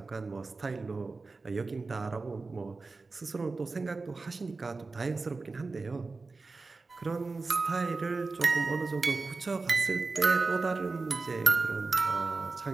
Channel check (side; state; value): left; quieter; 3.9 dB